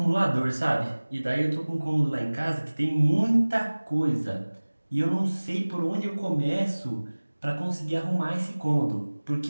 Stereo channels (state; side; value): inverted; both; correlation -1.00